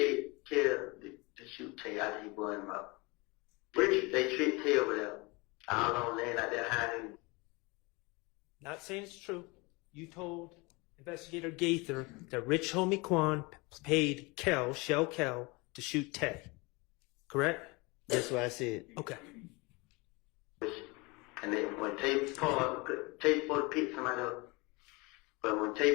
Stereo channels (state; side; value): quieter; right; 26.2 dB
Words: kill the shoot Tay after he bought him up. They tricked Tay over there. I don't know, laying out there hiding. Not saying it's true. You told Investigator Gaither that Rich Homie Quan paid Shell Kel, to shoot Tay. Correct? That's what I said. Okay. And then when Tay fought, Tay fought to pick somebody up. But when